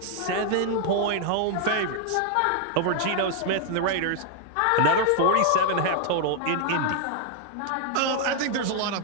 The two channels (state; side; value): different; both; correlation 0.00